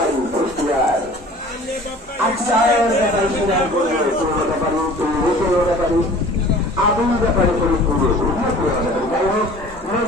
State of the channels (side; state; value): both; normal; correlation 0.46